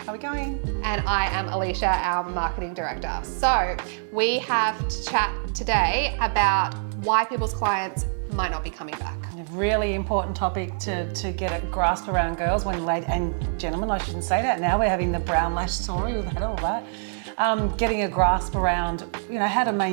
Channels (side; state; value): left; silent; digital silence